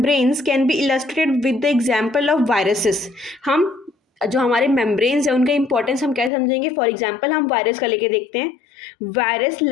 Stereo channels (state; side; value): drops out; right; at 6.3 s